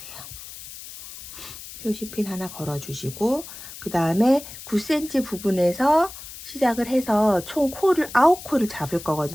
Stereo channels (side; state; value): left; noise; hiss, 14 dB below the sound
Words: 표시핀 하나 걸어주시고, 그 다음에 9cm 부분에서 시작을 해서 총 코를 9코를 잡을